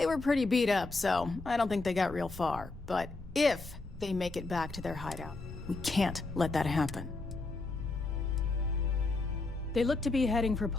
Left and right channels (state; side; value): quieter; right; 3.4 dB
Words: were pretty beat up, so I don't think they got real far. But if they make it back to their hideout, we can't let that happen. They look to be heading for